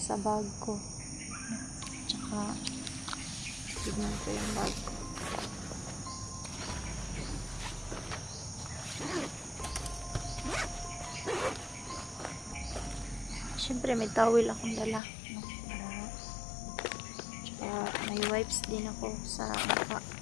bag ko. Tsaka tignan ko yung bag ko. syempre may towel akong dala, no? Tsaka may wipes din ako sa mukha.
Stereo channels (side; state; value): right; drops out; at 15.0 s